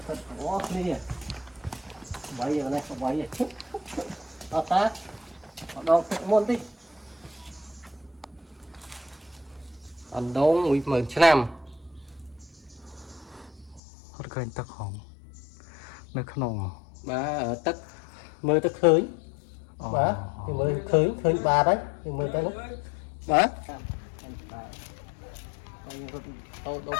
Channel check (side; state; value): right; drops out; at 13.8 s